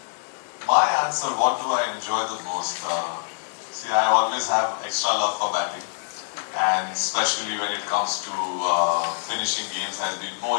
My answer, what do I enjoy the most? See, I always have extra love for batting. and especially when it comes to finishing games has been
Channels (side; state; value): right; silent; digital silence